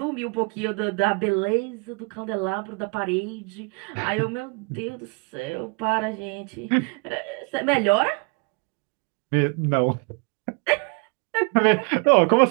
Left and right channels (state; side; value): quieter; left; 32.8 dB